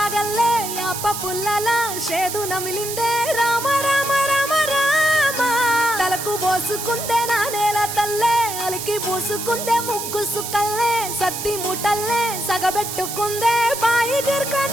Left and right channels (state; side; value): noise; right; hiss, 6 dB below the sound